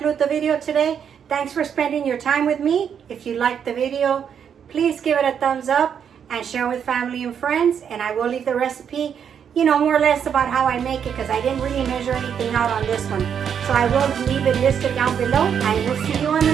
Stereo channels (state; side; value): quieter; left; 7.9 dB